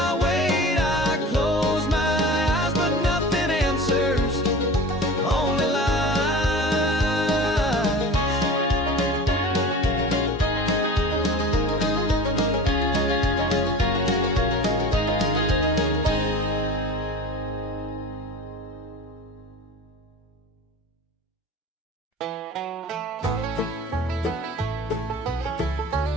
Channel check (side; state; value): both; normal; correlation 0.37